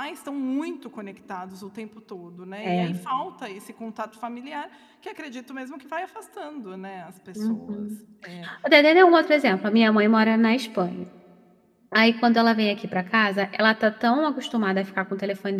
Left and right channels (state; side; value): identical; both; correlation 1.00